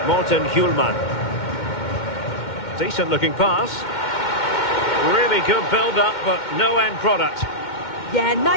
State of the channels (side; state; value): right; late; 2.1 ms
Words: Morten Hjulman. Decent looking pass. Really good build-up, but no end product. Yeah,